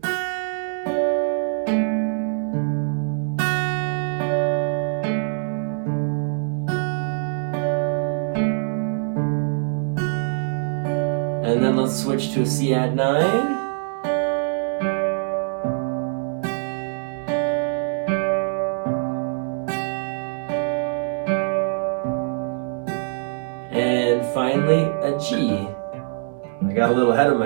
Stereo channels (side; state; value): left; silent; digital silence